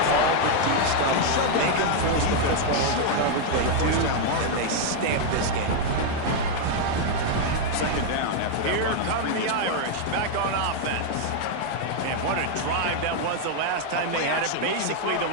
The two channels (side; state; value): both; different; correlation 0.00